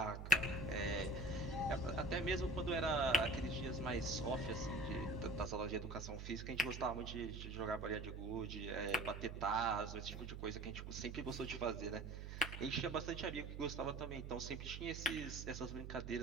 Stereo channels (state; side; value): noise; right; hum, 7 dB below the sound